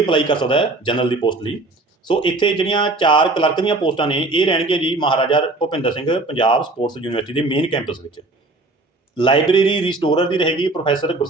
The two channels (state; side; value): quieter; left; 3.0 dB